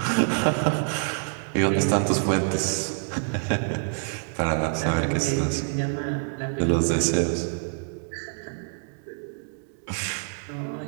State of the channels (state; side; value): silent; left; 61 dB below the other